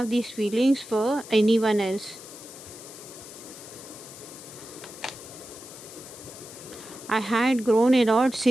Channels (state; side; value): noise; left; hiss, 15 dB below the sound